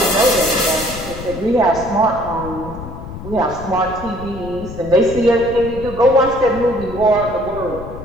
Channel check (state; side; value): noise; left; rumble, 12 dB below the sound